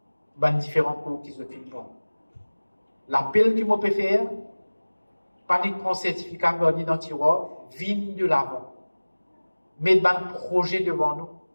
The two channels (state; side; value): inverted; both; correlation -1.00